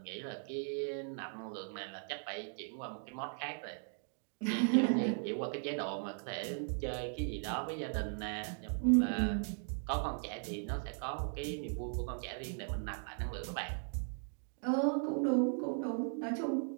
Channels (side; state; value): left; silent; 52 dB below the other